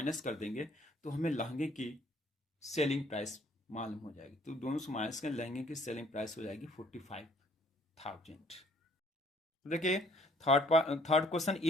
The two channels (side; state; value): both; normal; correlation 0.60